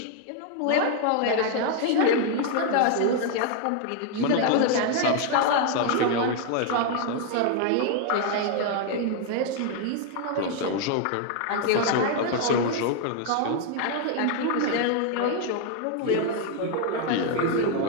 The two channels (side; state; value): both; different; correlation 0.00